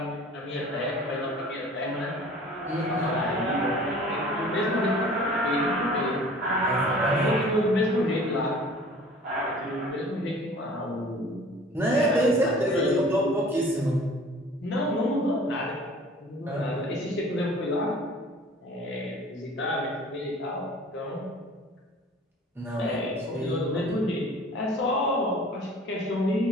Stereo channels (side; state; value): both; normal; correlation 0.47